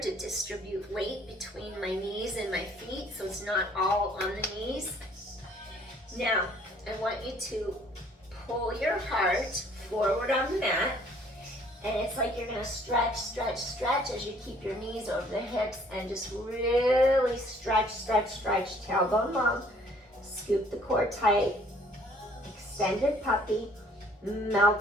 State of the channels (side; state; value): both; normal; correlation 0.59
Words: distribute weight between my knees and my feet, so it's not all on the knees. Now, I want you to pull your heart forward on the mat, and it's like you're gonna stretch, stretch, stretch as you keep your knees over the hips and just really stretch, stretch, stretch, tailbone long. Scoop the core tight, extended puppy,